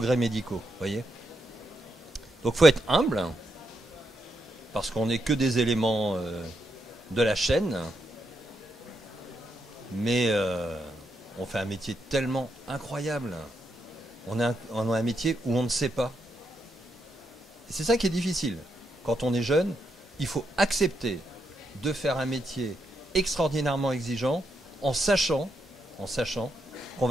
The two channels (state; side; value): normal; both; correlation 0.81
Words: médicaux, voyez. Donc il faut être humble, parce qu'on n'est que des éléments de la chaîne, mais on fait un métier tellement incroyable. On a un métier où on ne sait pas. Et c'est ça qui est difficile. Quand on est jeune, il faut accepter de faire un métier extraordinairement exigeant en sachant qu'on